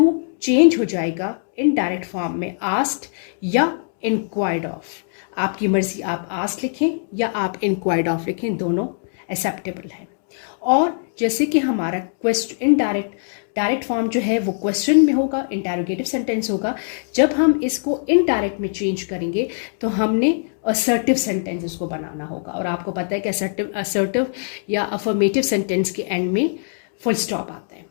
चेंज हो जाएगा इनडायरेक्ट फॉर्म में आस्क्ड या इंक्वायर्ड ऑफ. आपकी मर्जी, आप आस्क्ड लिखें या आप इंक्वायर्ड ऑफ लिखें, दोनों एक्सेप्टेबल है. और जैसे कि हमारा क्वेश्चन डायरेक्ट फॉर्म जो है वो क्वेश्चन में होगा, इंटरोगेटिव सेंटेंस होगा. जब हम इसको इनडायरेक्ट में चेंज करेंगे तो हमने असर्टिव सेंटेंस इसको बनाना होगा. और आपको पता है कि असर्टिव या अफर्मेटिव सेंटेंस के एंड में फुल स्टॉप आता है.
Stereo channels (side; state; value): right; silent; digital silence